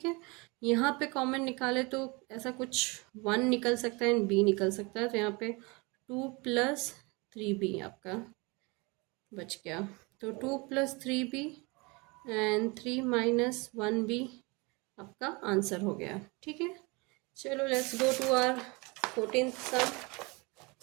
है, यहाँ पे कॉमन निकाले तो ऐसा कुछ 1 निकल सकता है एंड b निकल सकता है, तो यहाँ पे 2 प्लस 3b आपका बच गया। तो 2 plus 3b and 3 minus 1b आपका आंसर हो गया। ठीक है, चलो let's go to our 14th sum.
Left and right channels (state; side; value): quieter; left; 27.3 dB